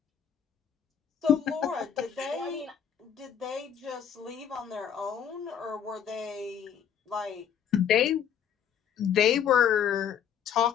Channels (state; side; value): quieter; right; 8.6 dB